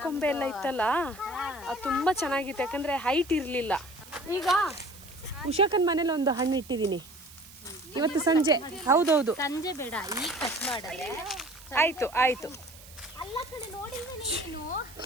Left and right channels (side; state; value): right; noise; hiss, 20 dB below the sound